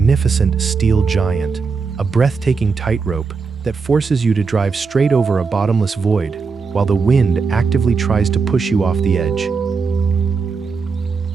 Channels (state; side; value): quieter; left; 4.9 dB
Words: steel giant, a breathtaking tightrope that forces you to drive straight over a bottomless void, while the wind actively tries to push you off the edge.